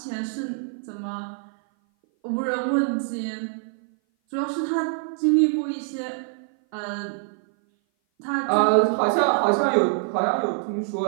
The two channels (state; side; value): silent; left; 57 dB below the other